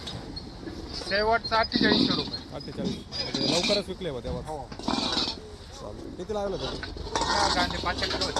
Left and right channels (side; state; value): both; identical; correlation 1.00